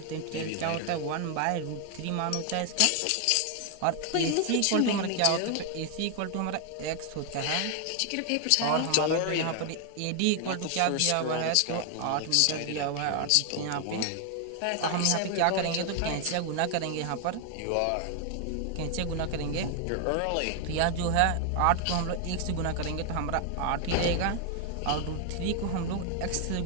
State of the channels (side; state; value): both; different; correlation 0.01